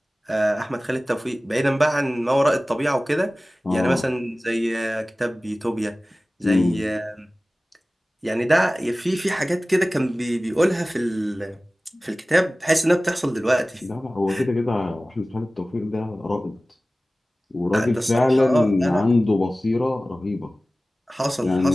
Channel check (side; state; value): both; normal; correlation 0.97